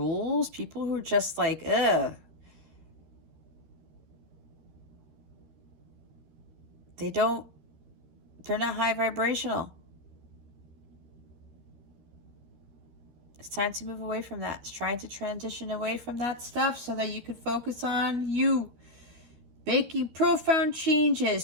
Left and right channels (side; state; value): left; late; 13 ms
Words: people who are just like, ugh. They're not high vibrational. It's time to move away from that. It's trying to transition away from that stuff so that you can focus on you. Making profound